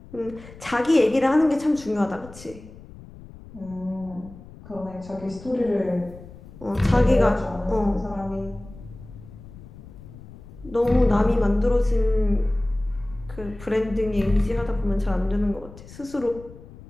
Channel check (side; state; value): left; noise; rumble, 18 dB below the sound